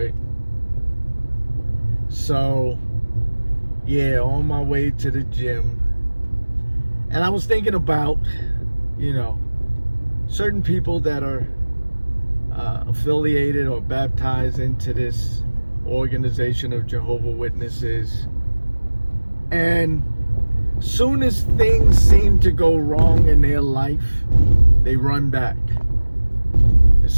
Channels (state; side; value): inverted; both; correlation -1.00